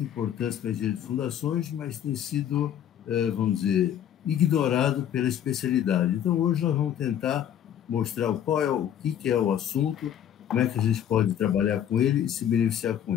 importância para a engenharia de fundações, mas tem sido, vamos dizer, ignorado pela especialidade. Então, hoje nós vamos tentar mostrar qual é o que é o assunto, como é que a gente pode trabalhar com ele e se beneficiar com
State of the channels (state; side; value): quieter; right; 10.0 dB